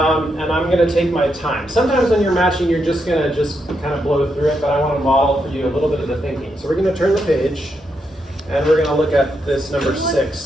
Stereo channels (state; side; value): normal; both; correlation 0.81